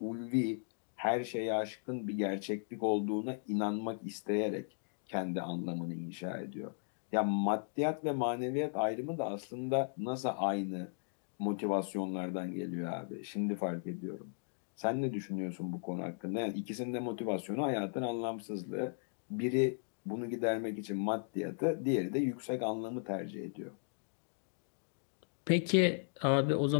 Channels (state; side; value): silent; right; digital silence